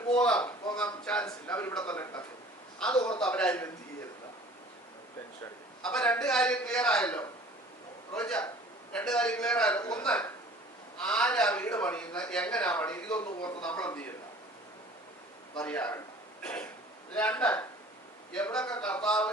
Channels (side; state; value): both; normal; correlation 0.48